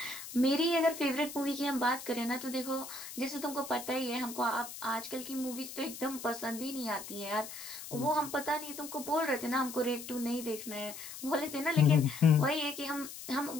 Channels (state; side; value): noise; left; hiss, 11 dB below the sound